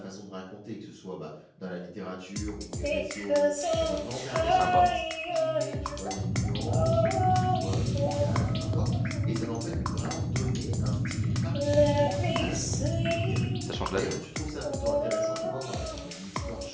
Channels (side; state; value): both; identical; correlation 1.00